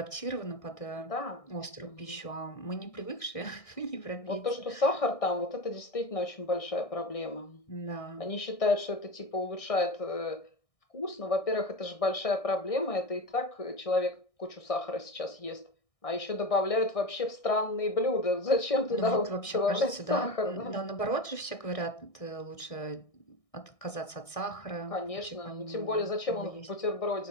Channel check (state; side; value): late; right; 1.6 ms